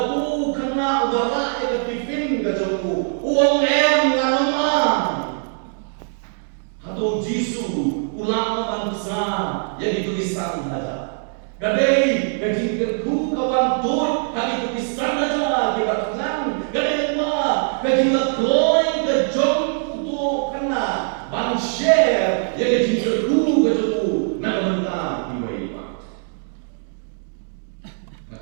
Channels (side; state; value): left; silent; 60 dB below the other